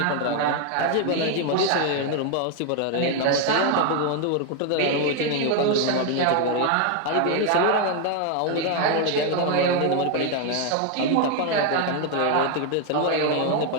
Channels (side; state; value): both; different; correlation 0.01